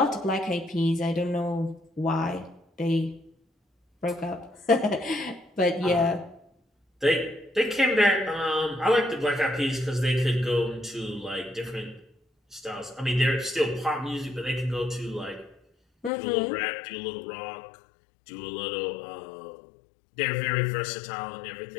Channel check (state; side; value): drops out; right; at 16.1 s